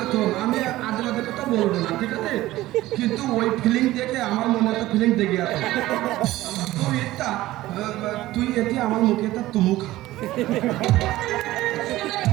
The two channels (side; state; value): left; quieter; 16.5 dB